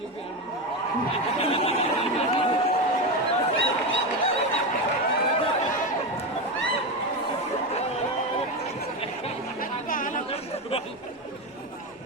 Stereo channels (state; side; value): normal; both; correlation 0.15